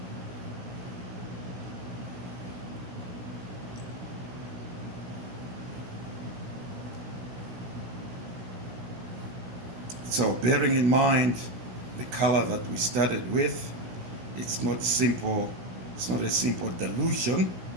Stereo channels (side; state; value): left; late; 16 ms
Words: So bearing in mind the color that we started with, it's not simple, it's not a simple dilution.